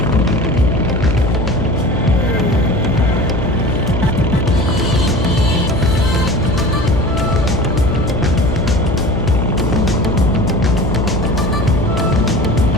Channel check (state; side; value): noise; left; hum, 2 dB below the sound